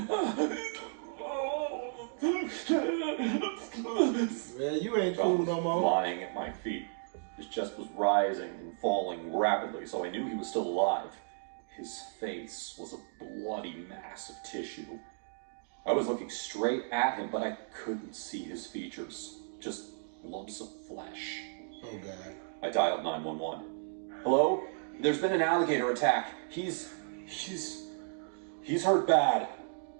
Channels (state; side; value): silent; left; digital silence